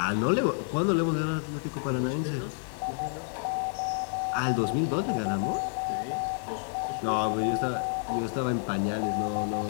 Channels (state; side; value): silent; right; 58 dB below the other